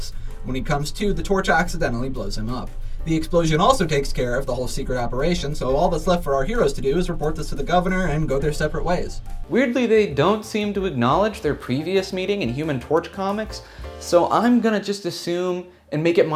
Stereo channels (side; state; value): both; identical; correlation 1.00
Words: When he comes to, the torch accidentally blows him up. The explosion also takes care of the whole secret operation, so all that's left for our heroes to do is report this to the governor and go their separate ways. Weirdly, they don't seem to acknowledge their previous meeting in Human Torch comics, so I'm gonna just assume and make it